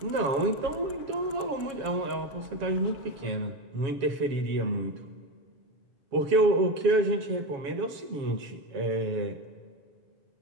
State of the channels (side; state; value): left; late; 7.3 ms